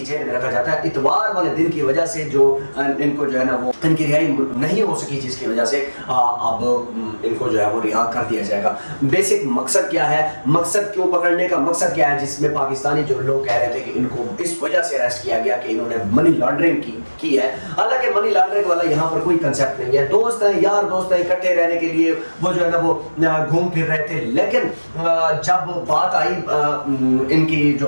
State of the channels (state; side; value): inverted; both; correlation -1.00